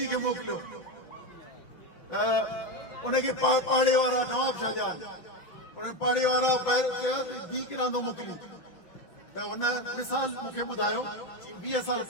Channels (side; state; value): right; late; 5.7 ms